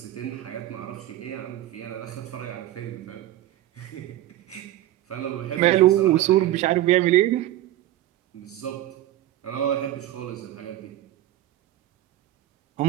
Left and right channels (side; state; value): left; quieter; 14.2 dB